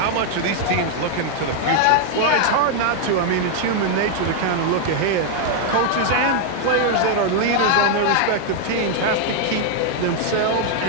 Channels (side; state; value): both; different; correlation 0.00